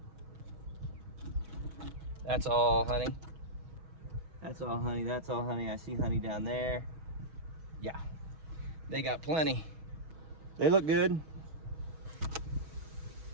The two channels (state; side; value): late; left; 6.2 ms